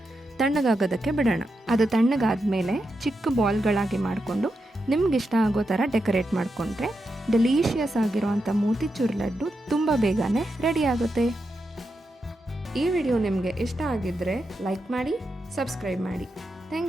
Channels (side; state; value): both; normal; correlation 0.86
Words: ತಣ್ಣಗಾಗೋದಕ್ಕೆ ಬಿಡೋಣ. ಅದು ತಣ್ಣಗಾದ್ಮೇಲೆ ಚಿಕ್ಕ ಬಾಲ್ಗಳಾಗಿ ಮಾಡಿಕೊಂಡು ನಿಮ್ಗಿಷ್ಟ ಆಗೋ ಥರ ಡೆಕೋರೇಟ್ ಮಾಡಿಕೊಂಡ್ರೆ ಡೆಲಿಷಿಯಸ್ ಆಗಿರೋವಂಥ ಮೋತಿಚೂರ್ ಲಡ್ಡು ತುಂಬ ಬೇಗನೆ ರೆಡಿ ಆಗುತ್ತೆ. ಈ ವಿಡಿಯೋ ನಿಮಗೆ ಇಷ್ಟ ಆಗಿದ್ದರೆ ಲೈಕ್ ಮಾಡಿ, ಸಬ್ಸ್ಕ್ರೈಬ್ ಮಾಡಿ.